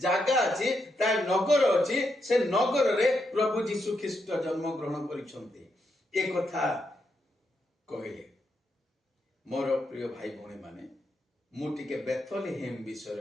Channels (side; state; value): both; normal; correlation 0.81